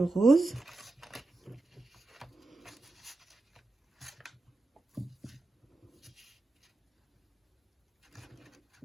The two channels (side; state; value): left; quieter; 3.1 dB